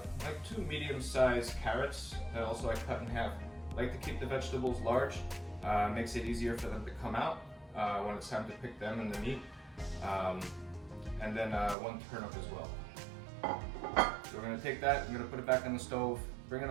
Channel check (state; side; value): drops out; left; at 11.8 s